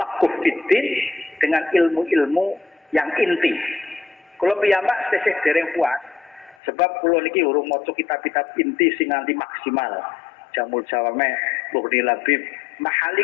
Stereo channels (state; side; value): drops out; right; at 6.6 s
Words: fiddin dengan ilmu-ilmu yang inti. Kulo piyambak tesih dereng puas sebab kulo niki urung maca kitab-kitab inti sing nganti maksimal. Jamul Jawame, Mughni Labib, mahali